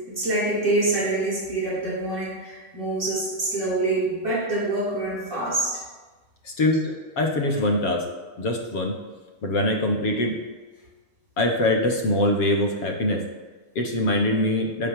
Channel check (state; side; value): late; right; 7.3 ms